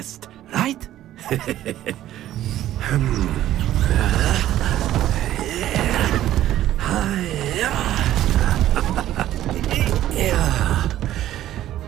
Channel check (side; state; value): left; quieter; 13.1 dB